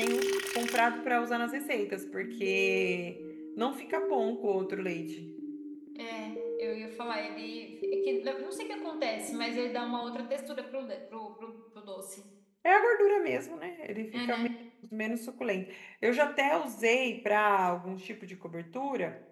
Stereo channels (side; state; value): both; identical; correlation 1.00